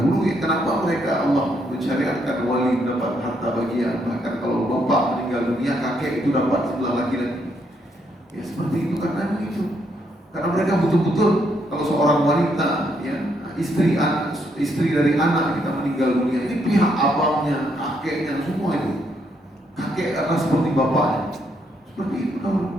Kenapa mereka Allah mensyariatkan wali mendapat harta bagian. Bahkan kalau bapak meninggal dunia, kakek itu dapat sebelah laki-laki. Ya seperti itu karena itu. Karena mereka betul-betul kalau seorang wanita, ya istri dari anak kita meninggal dunia, ini pihak abangnya, kakeknya, semua itu. Kakek adalah seperti bapaknya. Seperti itu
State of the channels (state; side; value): normal; both; correlation 0.74